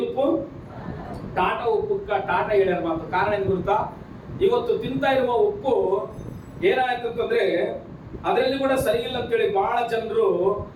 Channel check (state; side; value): identical; both; correlation 1.00